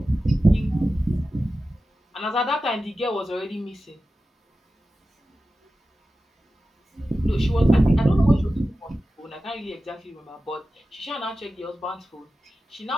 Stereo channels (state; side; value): normal; both; correlation 0.93